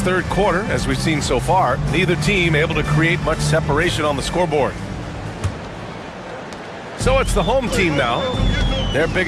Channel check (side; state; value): both; identical; correlation 1.00